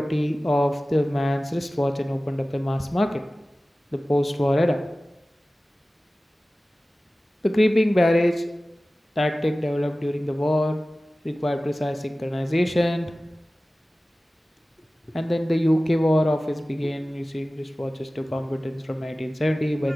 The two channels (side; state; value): both; normal; correlation 0.97